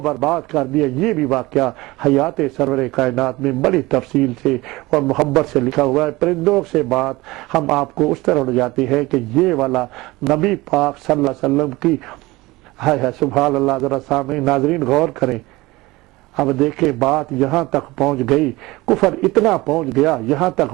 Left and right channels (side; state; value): left; quieter; 20.6 dB